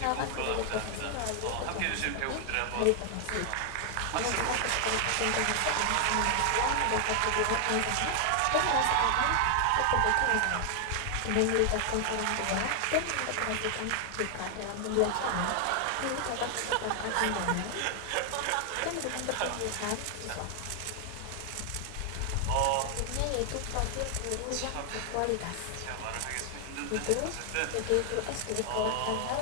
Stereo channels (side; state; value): both; different; correlation 0.00